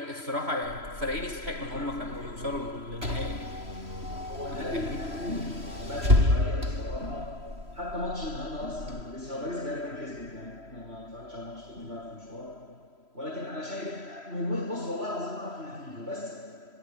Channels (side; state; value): left; late; 3.1 ms